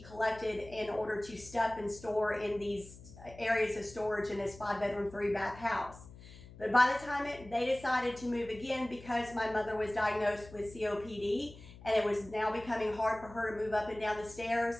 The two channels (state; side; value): noise; left; hum, 18 dB below the sound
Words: collected in order to stuff and store in these areas of storage in this 5-bedroom, 3-bath house. But by the time they decided to move again, because my mother was diagnosed with COPD and it was now becoming hard for her to move up and down the stairs,